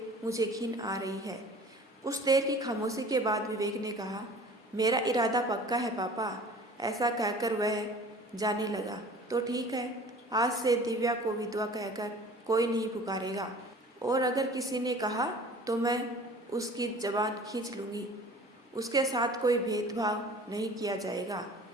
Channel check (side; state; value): both; normal; correlation 0.45